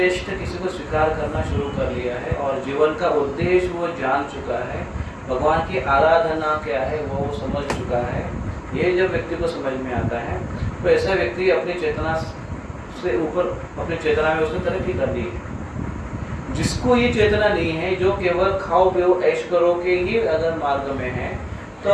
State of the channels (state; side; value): identical; both; correlation 1.00